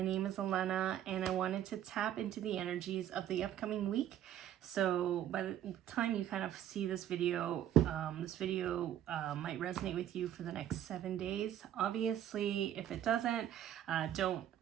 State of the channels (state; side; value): quieter; left; 11.1 dB